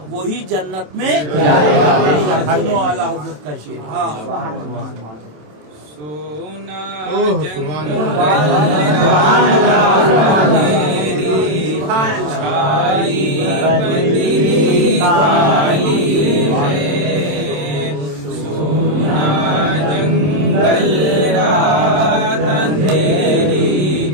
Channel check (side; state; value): left; late; 27 ms